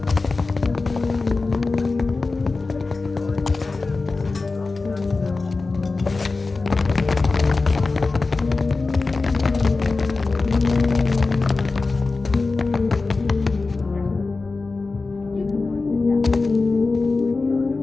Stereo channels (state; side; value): quieter; right; 3.8 dB